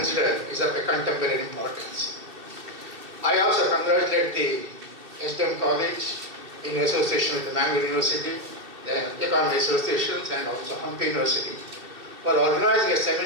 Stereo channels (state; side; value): late; left; 2.7 ms